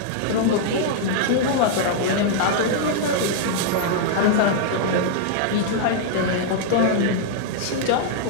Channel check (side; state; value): both; different; correlation -0.01